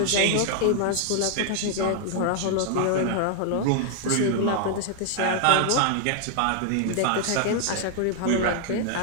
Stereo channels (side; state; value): both; different; correlation 0.00